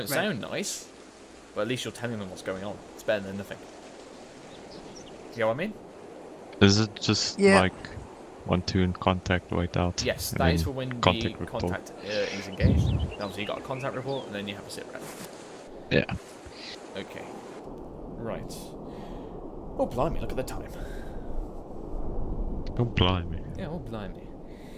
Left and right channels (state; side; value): identical; both; correlation 1.00